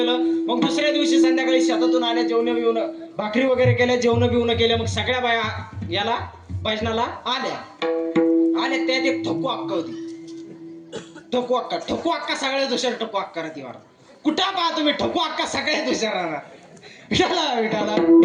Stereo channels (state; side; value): identical; both; correlation 1.00